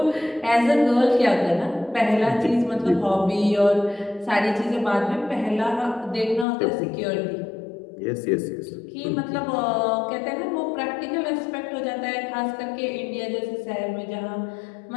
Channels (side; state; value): right; drops out; at 6.5 s